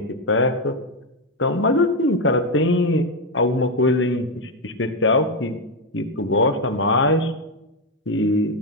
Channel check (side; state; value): both; normal; correlation 0.06